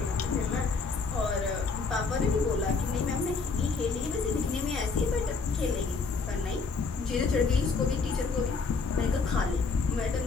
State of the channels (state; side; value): quieter; right; 4.5 dB